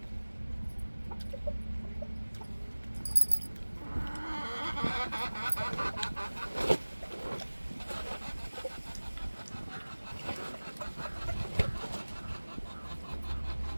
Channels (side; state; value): both; inverted; correlation -1.00